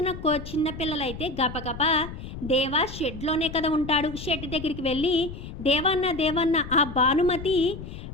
చిన్నపిల్లలైతే గబగబా దేవా షెడ్లోనే కదా ఉంటాడు, షెడ్ దగ్గరికి వెళ్ళి దేవన్న ఆ భానుమతి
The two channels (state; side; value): noise; left; rumble, 11 dB below the sound